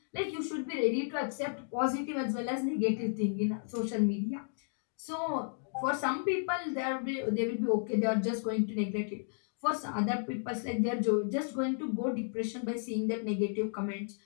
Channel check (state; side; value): silent; right; digital silence